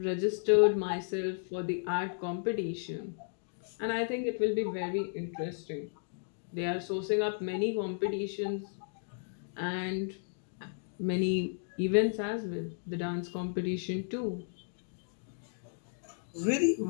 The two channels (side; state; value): right; silent; digital silence